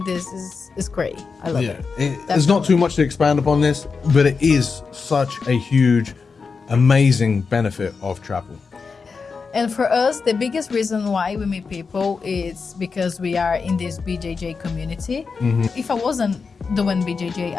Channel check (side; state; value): right; quieter; 5.0 dB